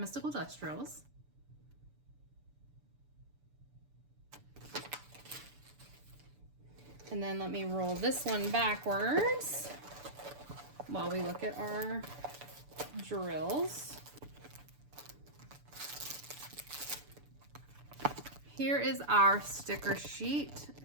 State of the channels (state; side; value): late; left; 6.9 ms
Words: dust drills. And then let me roll this one backwards while we look at our drills. Here is our sticker sheet.